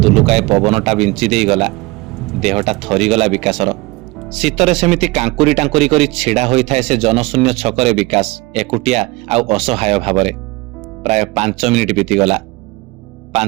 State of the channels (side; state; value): left; quieter; 22.4 dB